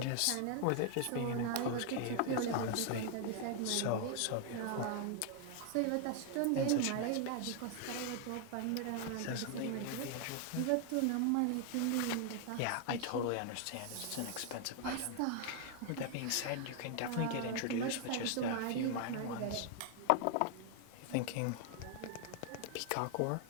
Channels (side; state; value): both; different; correlation 0.00